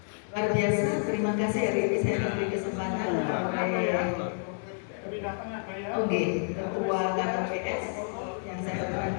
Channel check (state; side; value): silent; right; digital silence